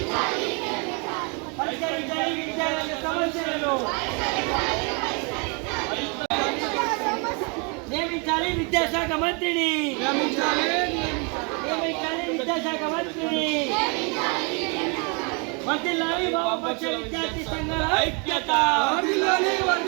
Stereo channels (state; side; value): quieter; left; 34.2 dB